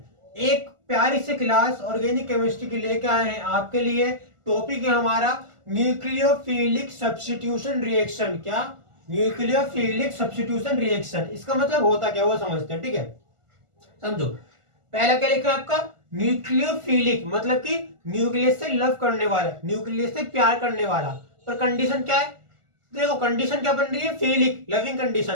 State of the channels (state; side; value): late; left; 1.4 ms